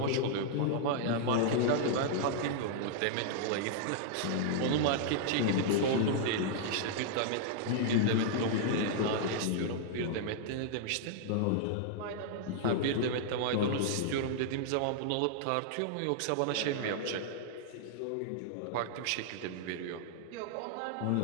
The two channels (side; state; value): both; different; correlation -0.01